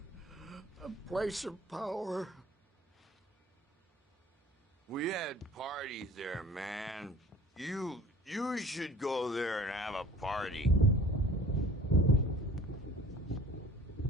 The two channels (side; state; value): both; normal; correlation 0.47